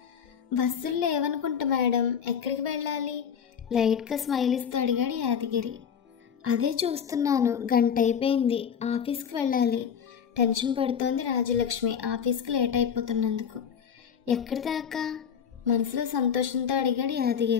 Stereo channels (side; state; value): right; quieter; 7.6 dB